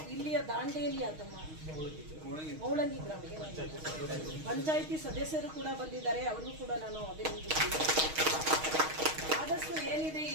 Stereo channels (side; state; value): left; late; 6.4 ms